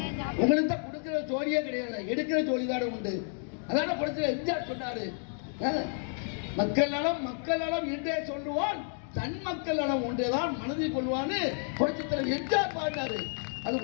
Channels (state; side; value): silent; right; 57 dB below the other